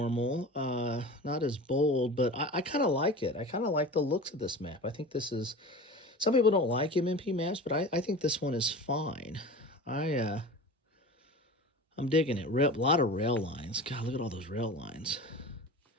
not as bold, but I kind of like it. I kind of like the looks of this map. I think this is, some people don't like MMP maps, but I think this one is fine. I'm digging it. A lot of rail lines. God, look at all those rail lines.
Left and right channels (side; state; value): both; normal; correlation 0.34